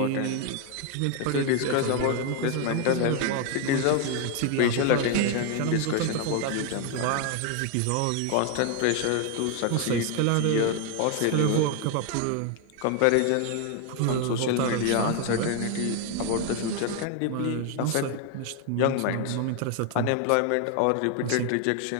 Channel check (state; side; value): different; both; correlation 0.01